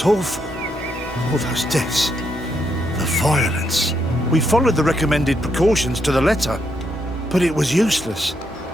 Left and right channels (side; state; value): both; normal; correlation 0.77